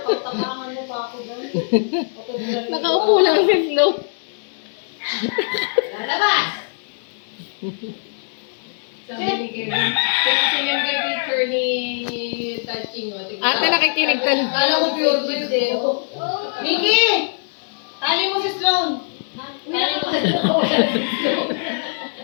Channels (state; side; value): silent; right; digital silence